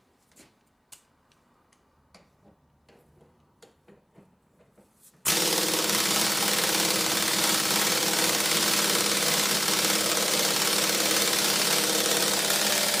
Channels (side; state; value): both; identical; correlation 1.00